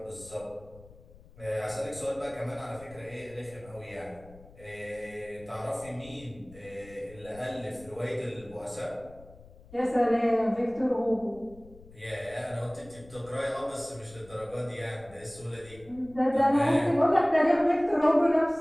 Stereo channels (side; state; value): left; noise; rumble, 22 dB below the sound